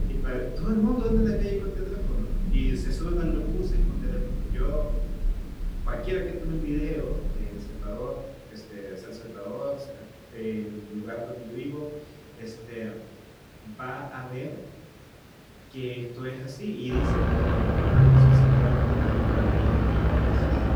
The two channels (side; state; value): both; identical; correlation 1.00